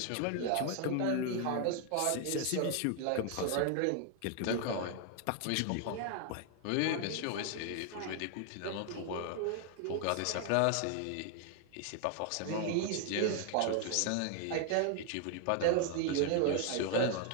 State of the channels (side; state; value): both; different; correlation 0.00